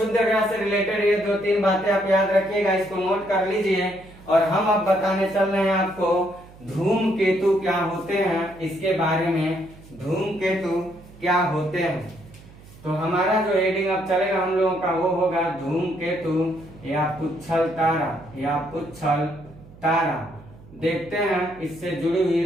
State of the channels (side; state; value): right; noise; hum, 22 dB below the sound